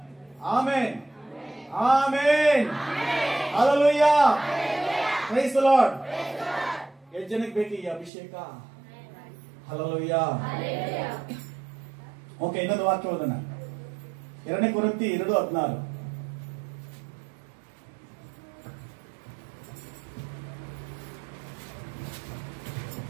amen, amen, hallelujah, praise the Lord. ಎಷ್ಟು ಜನಕ್ಕೆ ಬೇಕು ಈ ಅಭಿಷೇಕ? ಹಲ್ಲೆಲೂಯಾ. ಓಕೆ, ಇನ್ನೊಂದು ವಾಕ್ಯ ಓದೋಣ. 2 ಕೊರಿಂಥಿ 2:16.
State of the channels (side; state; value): left; drops out; at 8.1 s